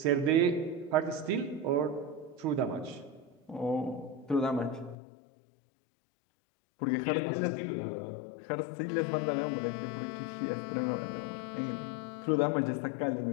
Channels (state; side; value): drops out; right; at 5.0 s